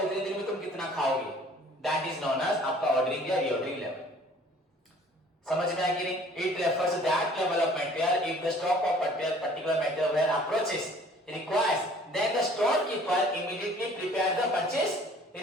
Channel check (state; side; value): normal; both; correlation 0.53